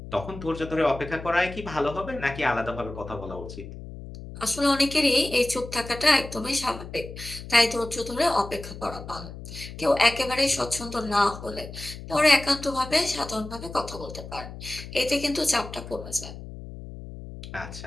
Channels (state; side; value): noise; left; hum, 12 dB below the sound